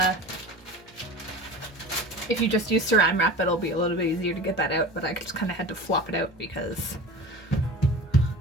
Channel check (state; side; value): normal; both; correlation 0.35